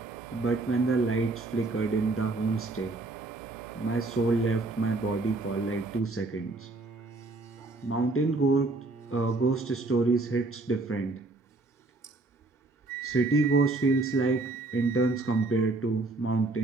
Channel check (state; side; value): quieter; left; 3.2 dB